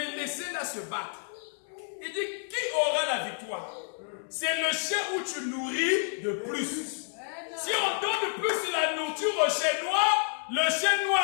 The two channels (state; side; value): silent; right; digital silence